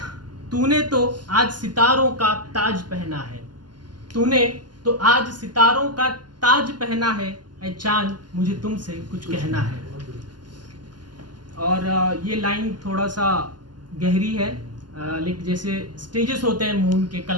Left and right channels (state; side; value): late; left; 0.71 ms